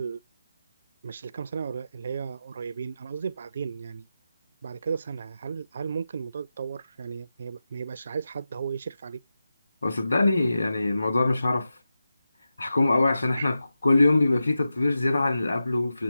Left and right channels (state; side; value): inverted; both; correlation -0.91